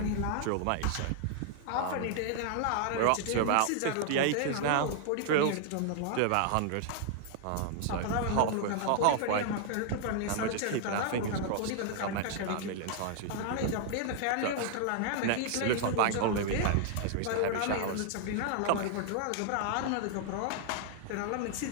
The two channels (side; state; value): both; different; correlation 0.00